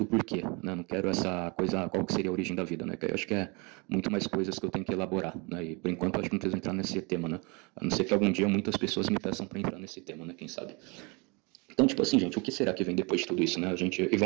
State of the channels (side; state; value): left; quieter; 29.4 dB